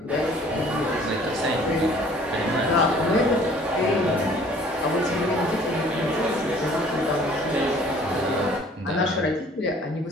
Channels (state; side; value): normal; both; correlation 0.54